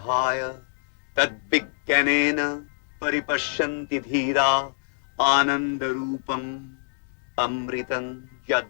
tad vigyanena paripashyanti dhira anandarupam amritam yad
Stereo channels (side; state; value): right; silent; digital silence